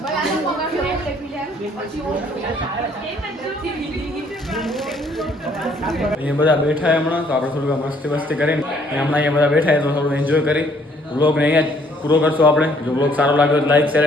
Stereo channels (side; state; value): both; normal; correlation 0.63